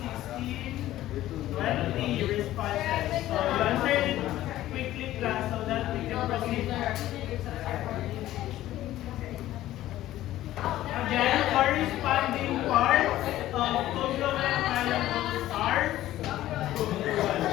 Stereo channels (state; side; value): quieter; right; 14.4 dB